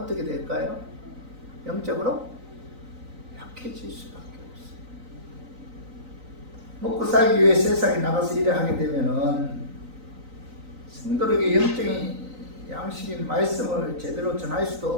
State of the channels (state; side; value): late; left; 3.9 ms